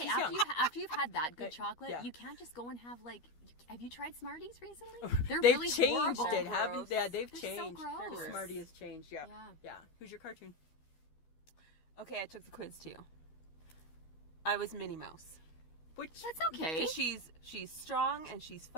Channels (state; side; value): late; right; 13 ms